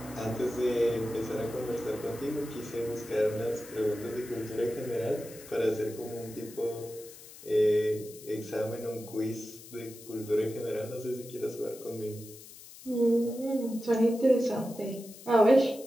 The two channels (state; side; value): noise; left; hiss, 17 dB below the sound